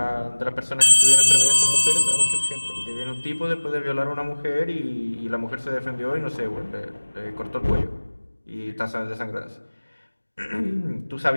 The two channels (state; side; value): inverted; both; correlation -1.00